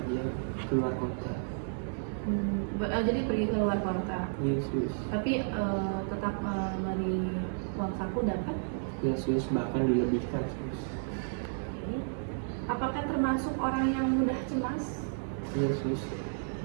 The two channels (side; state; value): left; silent; digital silence